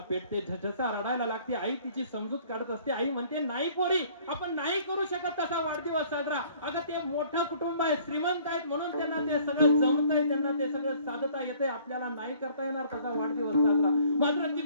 पेटते, झसा रडायला लागते. आई तिची समजूत काढत असते. आई म्हणते, नाही पोरी, आपण नाही करू शकत तसा वाढदिवस साजरा. अगं ते मोठं कुटुंब आहे, श्रीमंत आहेत म्हणून त्यांना ते सगळं जमतंय, त्यांना ते सगळं साधता येते, आपल्याला नाही करता येणार तसा वाढदिवस साजरा. मात्र ती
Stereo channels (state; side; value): inverted; both; correlation -0.56